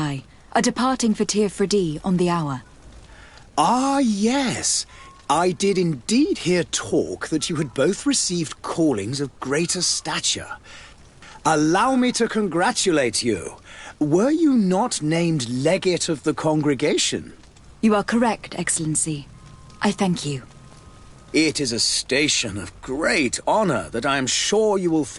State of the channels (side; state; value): both; identical; correlation 1.00